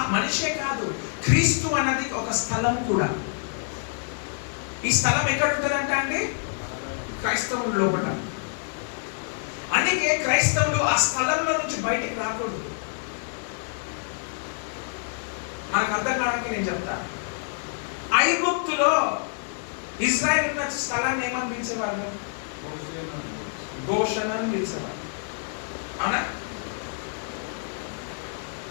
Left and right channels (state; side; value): silent; right; digital silence